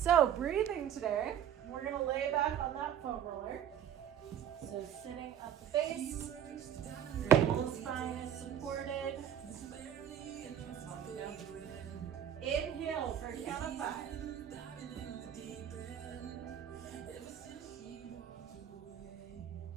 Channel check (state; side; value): quieter; left; 9.7 dB